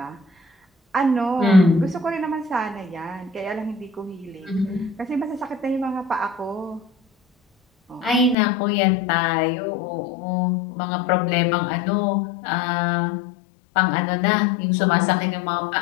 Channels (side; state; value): right; drops out; at 8.3 s